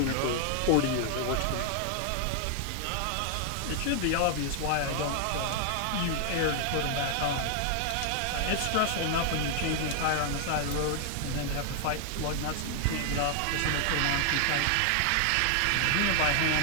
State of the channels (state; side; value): different; both; correlation 0.00